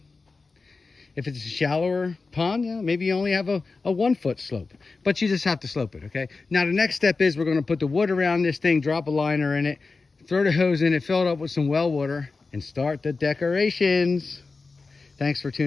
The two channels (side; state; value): right; quieter; 4.1 dB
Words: If it's a shallower pond, yeah, maybe you only have a 1-foot slope, but you just have to slope it, okay? Now the next step is we're gonna put the wood around this thing, drop a liner in it, throw the hose in it, fill it up with some well water, and start the decorations. Thanks for